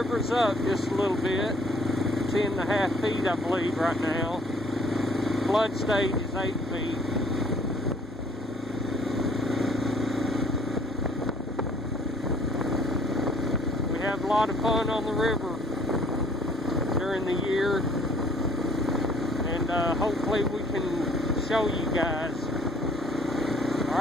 up just a little bit, 10.5 feet I believe right now. Flood stage is 8 feet. We have a lot of fun on the river during the year, and hopefully we can show you guys.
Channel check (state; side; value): normal; both; correlation 0.60